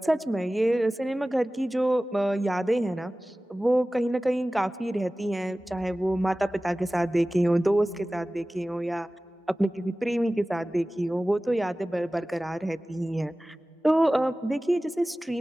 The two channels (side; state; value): both; normal; correlation 0.97